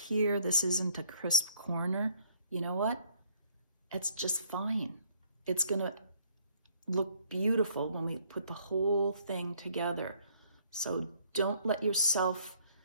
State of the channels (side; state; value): both; inverted; correlation -0.62